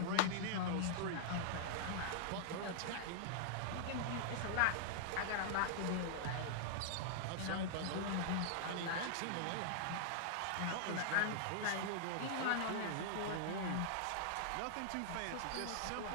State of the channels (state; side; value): different; both; correlation -0.01